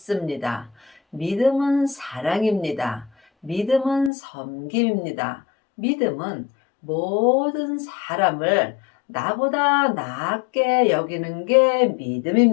믿음은 사랑입니다. 믿음은 섬김입니다. 믿음은 모든 사람을 나보다 낫게 여기는 게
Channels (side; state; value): right; drops out; at 4.1 s